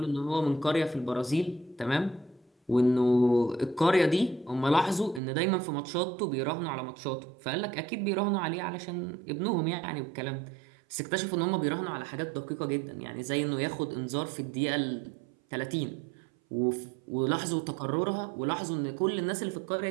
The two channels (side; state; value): left; drops out; at 5.2 s